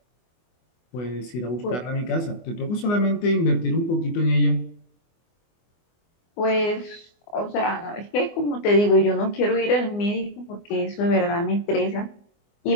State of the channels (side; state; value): right; late; 24 ms